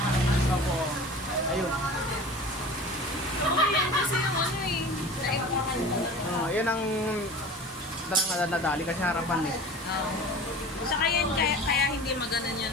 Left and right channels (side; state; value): both; normal; correlation 0.38